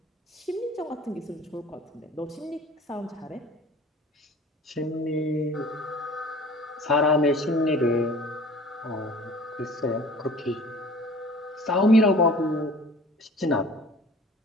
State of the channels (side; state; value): both; normal; correlation 0.46